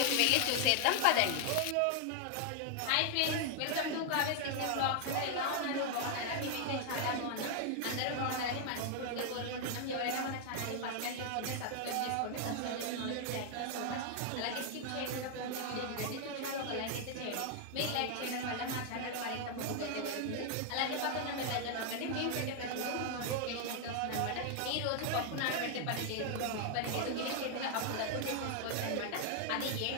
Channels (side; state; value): both; different; correlation 0.00